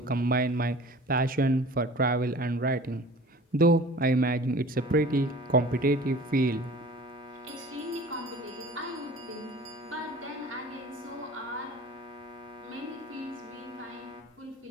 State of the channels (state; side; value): normal; both; correlation 0.43